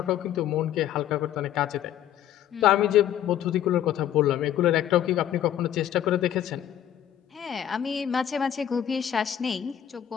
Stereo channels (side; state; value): right; quieter; 10.9 dB